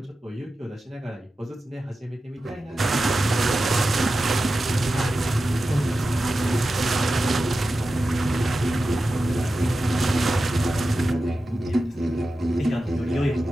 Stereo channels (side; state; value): both; normal; correlation 0.92